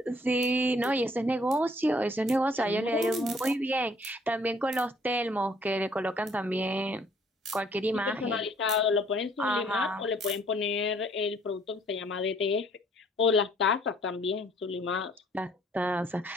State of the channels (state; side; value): normal; both; correlation 0.61